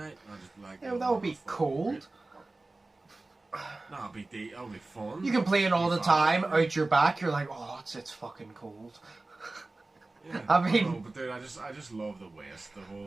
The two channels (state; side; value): quieter; left; 3.1 dB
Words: And I just like, Yeah, that would be cold. That would be fun. You can play it all the time out your back. You're like, oh, it's fucking cold. Yeah, I mean, know, but dude, I just love the West, the